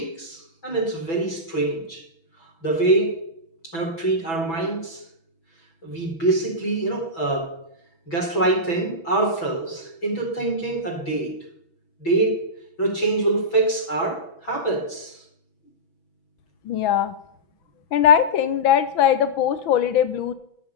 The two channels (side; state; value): right; late; 6.1 ms